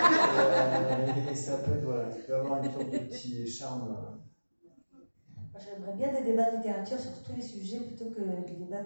Et ça peut être, voilà, il peut avoir une sorte de petit charme. Moi, j'aimerais bien des débats de littérature sur tous les sujets plutôt que des débats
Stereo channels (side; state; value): both; inverted; correlation -1.00